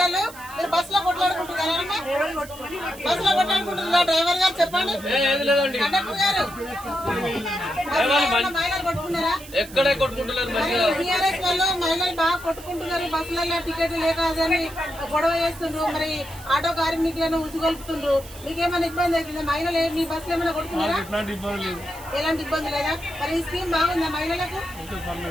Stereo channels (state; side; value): noise; right; hiss, 17 dB below the sound